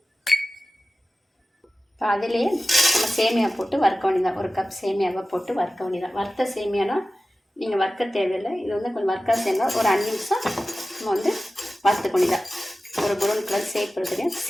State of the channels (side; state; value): both; normal; correlation 0.95